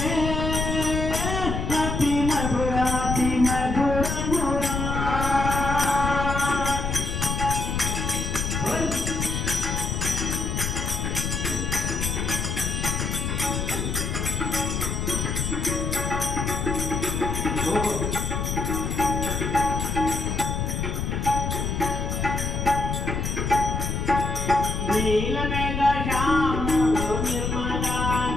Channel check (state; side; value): noise; left; rumble, 1 dB below the sound